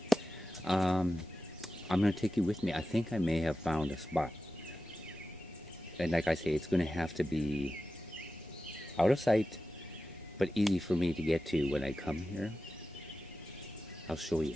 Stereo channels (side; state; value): both; normal; correlation 0.93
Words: I'm gonna take you with me. I think I may have found a spot. And like I say, it's gonna have to be out of sight, but easy for me to get to when I come here. I'll show you.